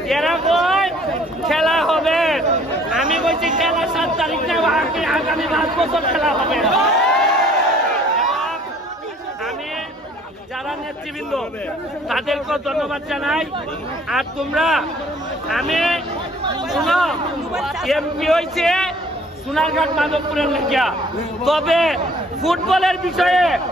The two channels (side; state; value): both; normal; correlation 0.55